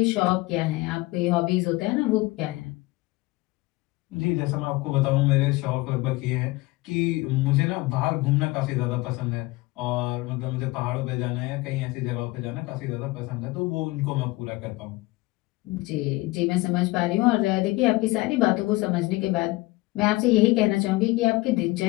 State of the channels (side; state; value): right; quieter; 21.4 dB